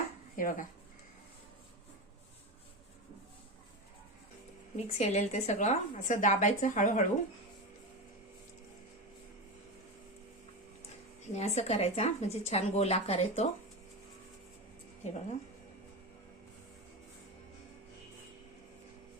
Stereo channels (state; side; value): normal; both; correlation 0.19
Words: हे बघा मिक्स केलेलं ते सगळं असं दाबायचं हळूहळू आणि असं करायचा म्हणजे छान गोल आकार येतो. हे बघा